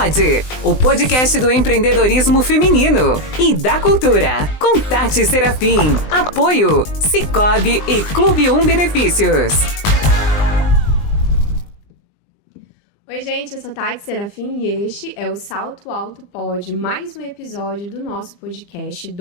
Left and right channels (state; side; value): late; right; 20 ms